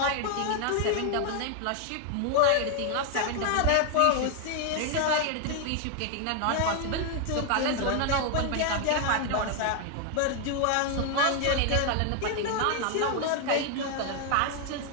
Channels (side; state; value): both; different; correlation 0.00